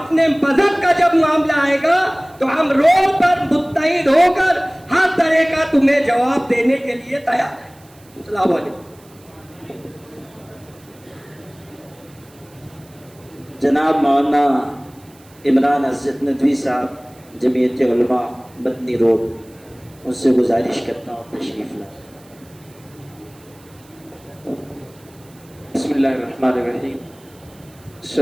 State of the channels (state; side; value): noise; right; hiss, 28 dB below the sound